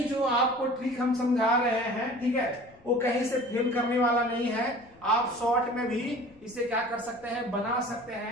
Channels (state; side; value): noise; left; rumble, 28 dB below the sound